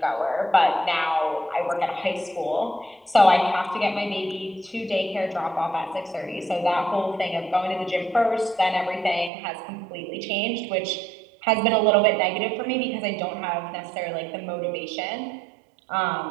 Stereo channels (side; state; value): left; drops out; at 9.3 s